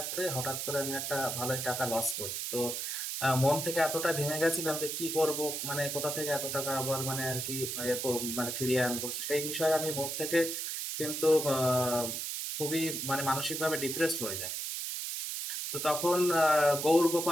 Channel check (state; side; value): noise; right; hiss, 3 dB below the sound